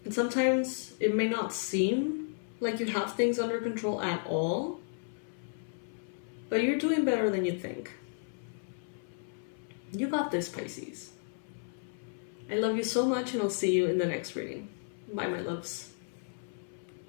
And sometimes it may not seem like you have things under control at all, but you're doing better than you think. You got this, Pisces. I love you so much, and I'll see you in the next reading. Bye, my loves.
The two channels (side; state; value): right; silent; 56 dB below the other